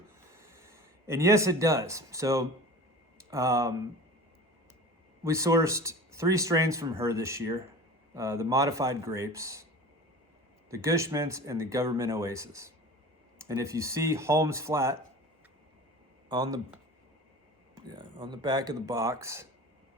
And yes, it does. So we sourced 3 strains from her this year, the modified grapes, the Gush Mintz, and the Governmint Oasis. And if you see Holmes Flat on the back of the box,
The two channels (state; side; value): normal; both; correlation 0.37